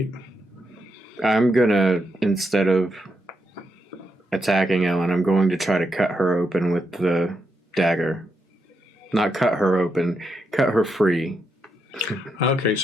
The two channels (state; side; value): normal; both; correlation 0.82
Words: I'm gonna, instead of attacking Ellen, I'm going to try to cut her open with the dagger. Not cut her open, cut her free. Okay,